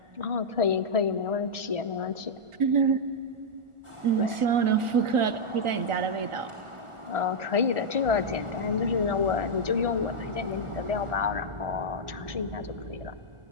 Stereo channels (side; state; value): left; late; 1.4 ms